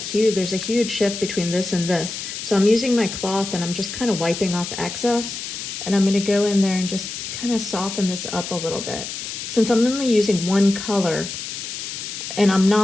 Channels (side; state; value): left; noise; hiss, 7 dB below the sound